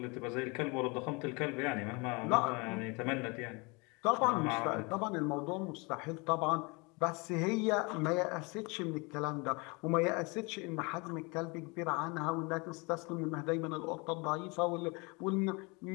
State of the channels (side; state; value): right; quieter; 28.6 dB